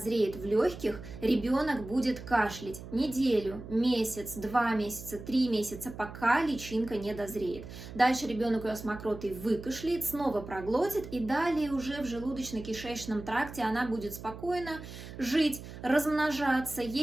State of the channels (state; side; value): noise; right; hum, 13 dB below the sound